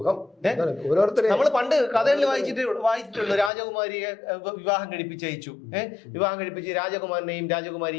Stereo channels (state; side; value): drops out; right; at 3.5 s